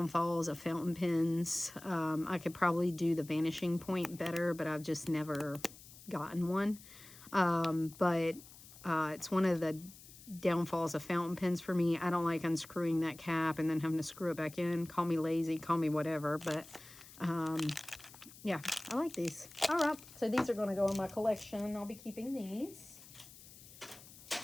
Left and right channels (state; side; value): noise; left; hiss, 19 dB below the sound